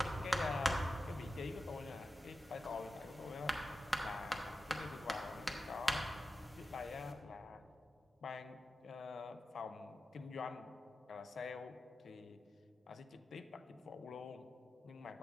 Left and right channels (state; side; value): normal; both; correlation 0.92